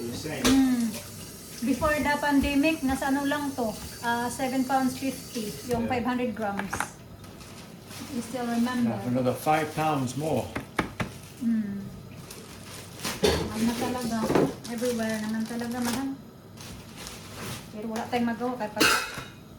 the same. Before the pandemic, nasa ano lang to, 7 pounds 50, yung Yeah. 500 grams. You still remember? Now for another 5 pounds more. Mahal na talaga. Everywhere naman talaga mahal. Pero wala tayong magawa kahit pag...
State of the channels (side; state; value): both; identical; correlation 1.00